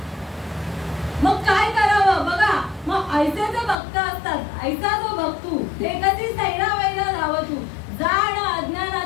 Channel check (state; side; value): drops out; right; at 3.8 s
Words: मग काय करावं बघा. मग ऐसे जो भक्त असतात, ऐसा जो भक्तू ते कधी सैरा वैरा धावतू, जाण